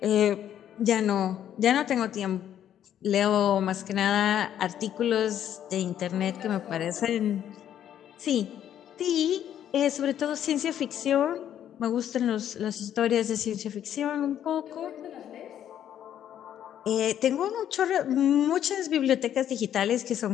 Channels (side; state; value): right; quieter; 10.4 dB